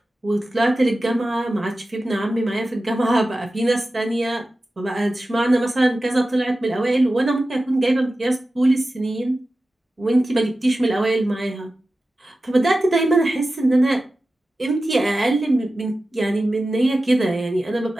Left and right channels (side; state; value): both; normal; correlation 0.94